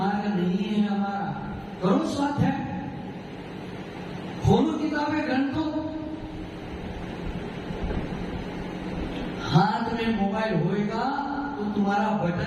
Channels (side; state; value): both; identical; correlation 1.00